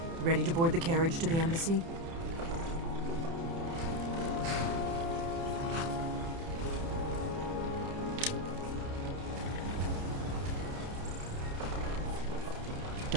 Ready to board the carriage to the embassy?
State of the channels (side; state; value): left; late; 30 ms